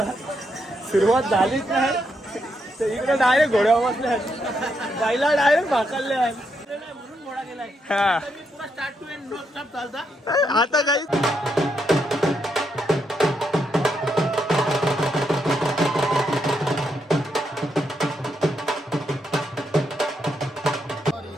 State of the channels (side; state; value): both; normal; correlation 0.80